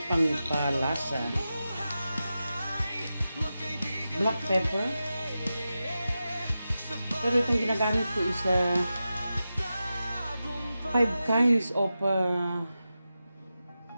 pangpalasa. Black pepper. Pero itong ginagamit ko is 5 kinds of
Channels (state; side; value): inverted; both; correlation -0.92